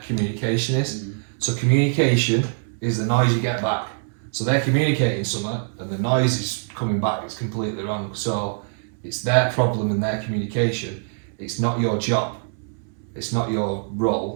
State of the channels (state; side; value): silent; left; 63 dB below the other